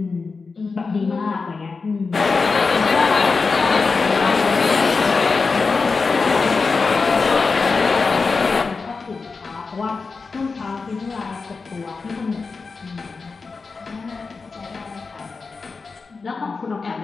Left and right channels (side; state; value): right; quieter; 4.5 dB